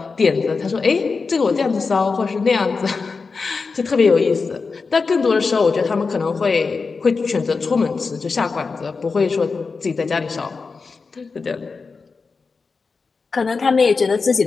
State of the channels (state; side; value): quieter; right; 4.6 dB